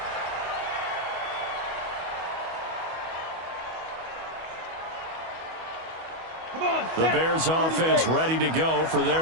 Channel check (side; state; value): left; late; 25 ms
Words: The Bears offense ready to go for their